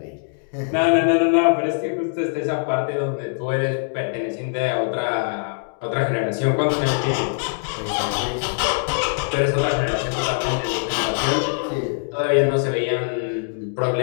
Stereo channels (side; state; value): right; silent; digital silence